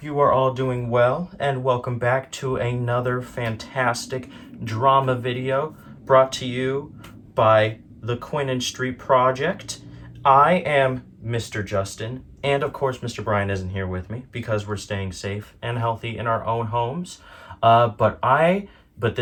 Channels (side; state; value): both; identical; correlation 1.00